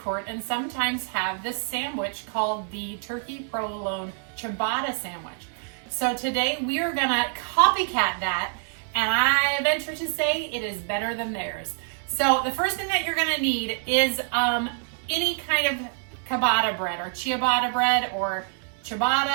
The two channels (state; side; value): silent; left; 57 dB below the other